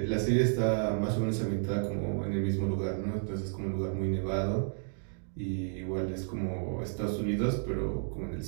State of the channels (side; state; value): left; silent; digital silence